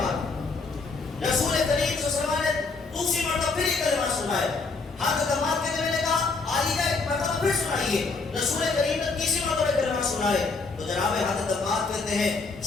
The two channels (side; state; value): right; quieter; 4.1 dB